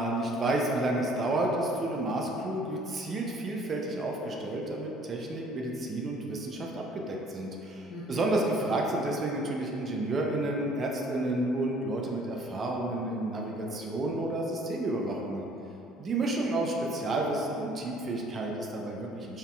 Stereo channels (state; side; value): normal; both; correlation 0.57